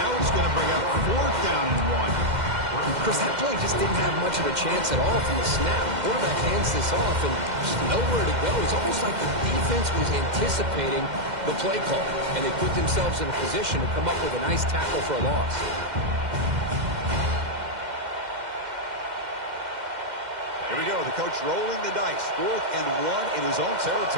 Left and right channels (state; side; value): late; left; 2.1 ms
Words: it's going to bring up 4th down and 1. Chris, that play just didn't have much of a chance at all from the snap. Quarterback hands this off and just nowhere to go. It's almost like the defense was anticipating the play call, and they put themselves in a position to come up with a nice tackle for a loss. Here we go. The coach rolling the dice. 4th and 1 in his own